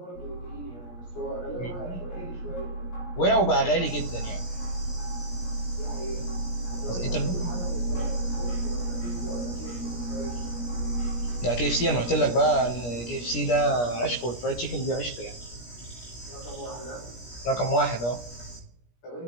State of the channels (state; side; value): late; right; 17 ms